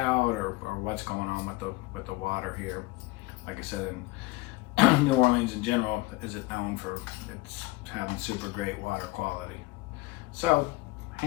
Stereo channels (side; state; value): right; quieter; 21.2 dB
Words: or what's going on with the water here. Like I said, in New Orleans in general isn't known for its having super great water quality. So,